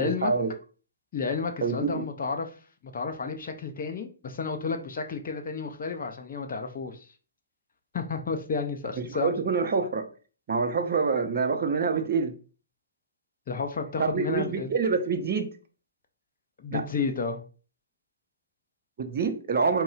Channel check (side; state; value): both; inverted; correlation -0.37